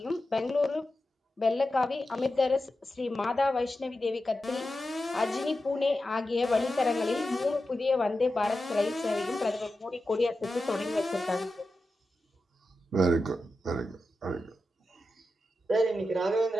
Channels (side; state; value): both; normal; correlation 0.91